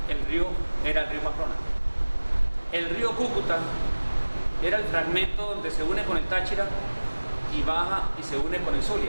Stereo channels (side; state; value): both; inverted; correlation -1.00